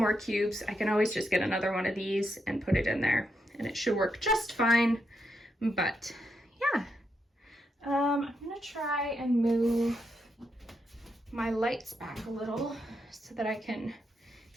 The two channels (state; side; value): normal; both; correlation 0.81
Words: cubes, I can always just get another one of these and put it in there, and it should work just fine. But yeah, I'm gonna try and move my lights back a little so that I can